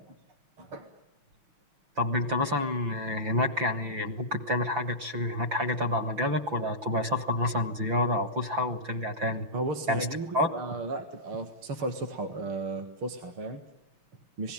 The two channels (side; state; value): left; late; 5.9 ms